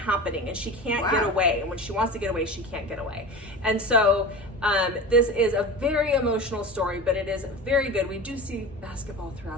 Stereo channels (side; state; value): both; normal; correlation 0.31